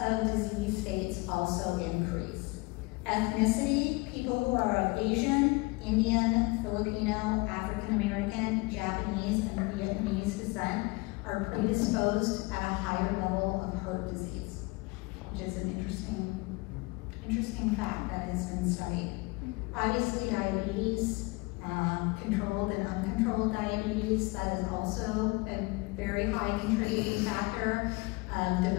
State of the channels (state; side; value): quieter; right; 25.1 dB